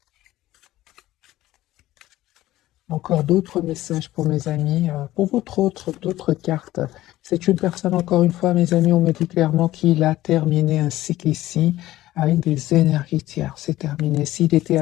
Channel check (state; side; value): quieter; right; 15.5 dB